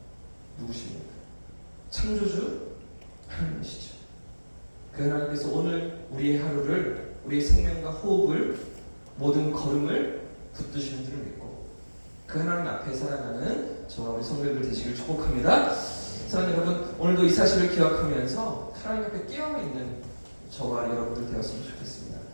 누구십니까? 창조주 하나님이시죠. 그 하나님께서 오늘 우리의 하루를, 우리의 생명과 호흡을, 모든 걸음을 붙드시는 줄을 믿고 그 하나님 앞에 살아가는 저와 우리 성도들 되시길 축복합니다. 사랑하는 여러분, 오늘도 이 사실을 기억하면서 하나님 앞에 깨어있는 저와 여러분들 되었으면 좋겠습니다.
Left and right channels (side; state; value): both; inverted; correlation -1.00